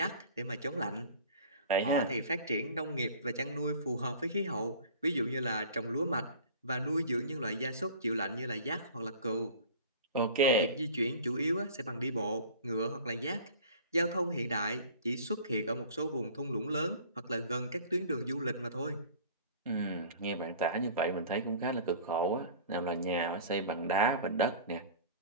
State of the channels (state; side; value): inverted; both; correlation -0.43